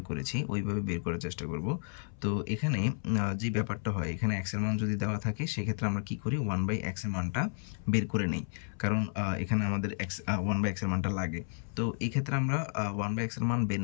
করেছি ওইভাবে বের করার চেষ্টা করব। তো এখানে যে ব্যাপারটা হয়, এখানে x এর মান যদি দেওয়া থাকে সেক্ষেত্রে আমরা কি করি 1/x এর মানটা বের করে নেই, কারণ এখানে আমাদের 1/x এর মানটা লাগে। তো তো এই ক্ষেত্রে আমরা 1/x এর মান বের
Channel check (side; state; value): right; silent; 56 dB below the other